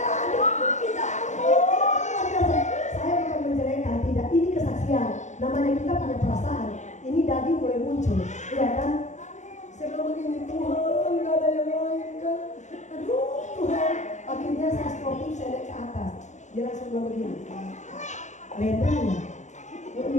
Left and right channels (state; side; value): late; right; 0.34 ms